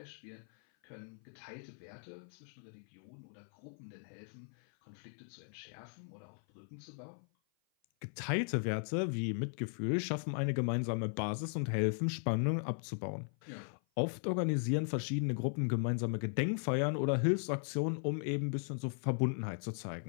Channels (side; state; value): right; silent; 53 dB below the other